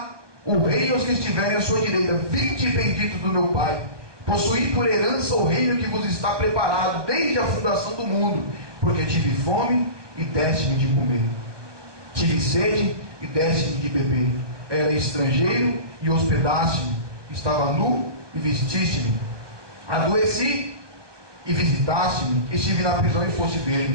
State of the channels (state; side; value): late; left; 1.2 ms